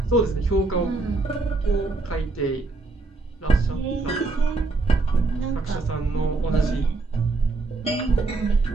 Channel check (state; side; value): quieter; left; 3.6 dB